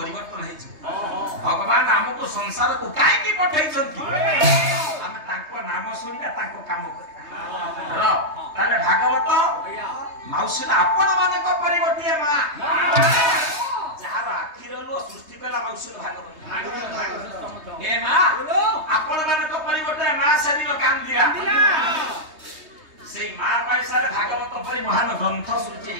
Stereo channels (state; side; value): late; left; 3.2 ms